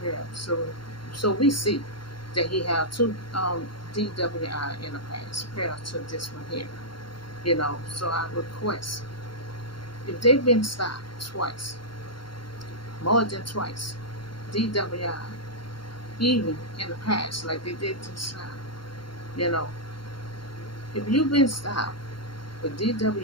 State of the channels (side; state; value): right; late; 0.73 ms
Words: period. So we see that he had two DWI in the past prior to this one here. So I request, if they've been stopped twice, more than twice, DWI, even in the past, like they did this time, you know, if you've been stopped with